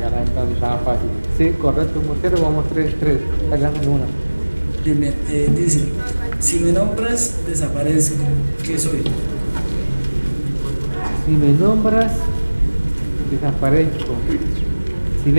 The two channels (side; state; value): both; inverted; correlation -1.00